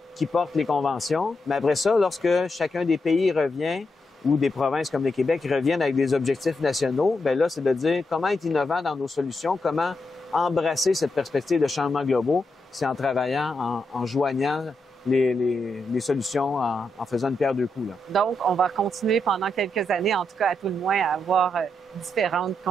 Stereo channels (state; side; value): normal; both; correlation 0.83